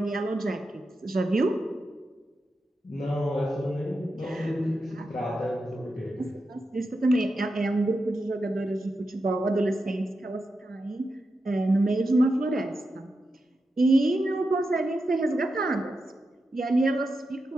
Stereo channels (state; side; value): normal; both; correlation 0.88